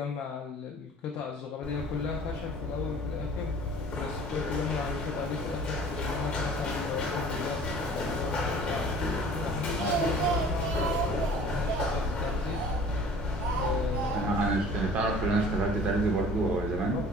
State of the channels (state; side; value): normal; both; correlation 0.48